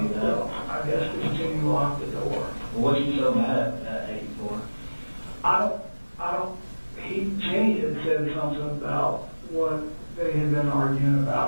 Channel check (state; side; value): inverted; both; correlation -1.00